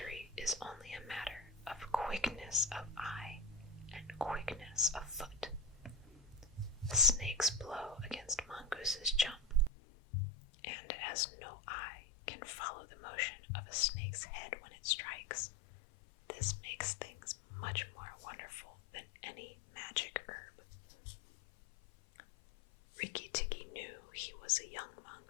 is only a matter of quickness of eye and quickness of foot. A snake's blow against mongooses jump, and as no eye can follow the motion of a snake's head when it strikes, this makes things much more wonderful than any magic herb. Rikki Tikki knew he was a young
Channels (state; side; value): drops out; right; at 9.7 s